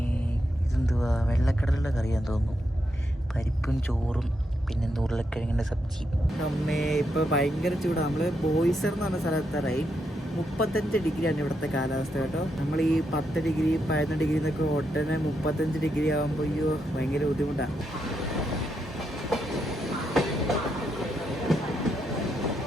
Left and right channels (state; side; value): normal; both; correlation 0.82